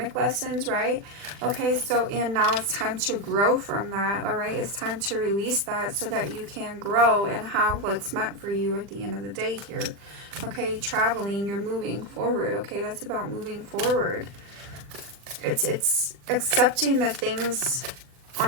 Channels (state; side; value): late; left; 40 ms